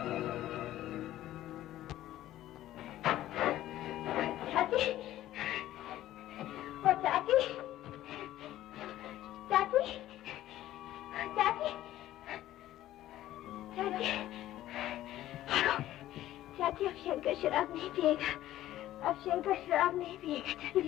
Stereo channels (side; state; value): right; quieter; 14.0 dB